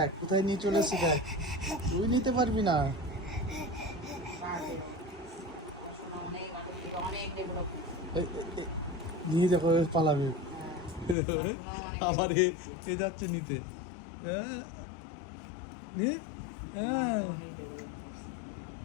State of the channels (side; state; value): right; drops out; at 11.2 s